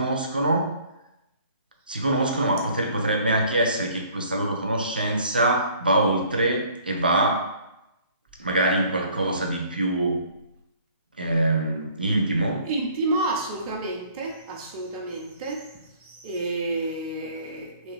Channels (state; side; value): inverted; both; correlation -0.56